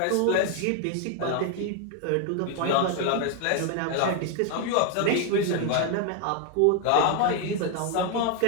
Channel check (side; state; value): both; different; correlation 0.01